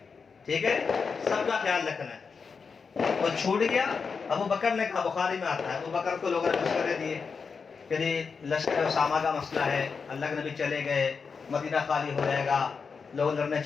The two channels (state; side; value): quieter; right; 5.4 dB